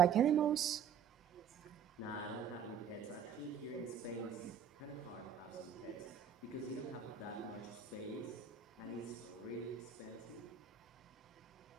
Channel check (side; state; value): left; quieter; 7.8 dB